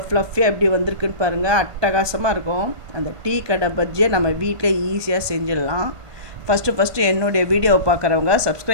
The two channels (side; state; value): left; late; 1.5 ms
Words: ஃப்ளஃபியாக எப்படி வந்திருக்குன்னு பாருங்கள், அட்டகாசமாக இருக்கும். அந்த டீ கடை பஜ்ஜியை நம்ம வீட்டில் ஈஸியாக செஞ்சிடலாம். ஃபஸ்ட்டு என்னுடைய வீடியோவை பார்க்குறவங்க